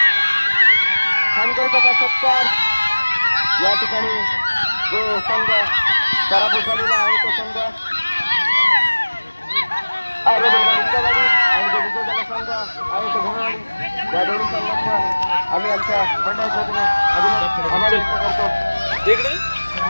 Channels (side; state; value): both; inverted; correlation -1.00